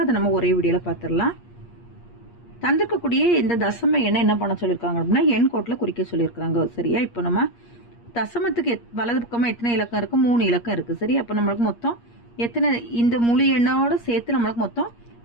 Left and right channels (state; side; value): late; right; 8.5 ms